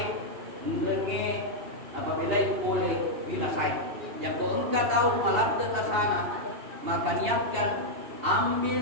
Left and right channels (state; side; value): late; left; 2.8 ms